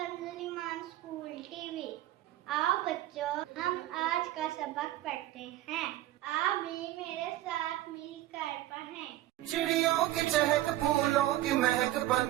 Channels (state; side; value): quieter; left; 15.1 dB